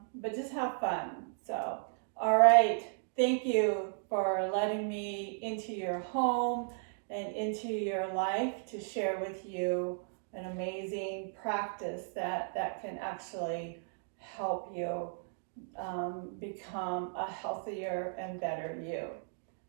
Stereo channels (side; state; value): left; silent; digital silence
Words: just have fun. So, all right, thank you for letting me into your home and into your life to share with you an amazing practice that can actually help you become a healthier and better you.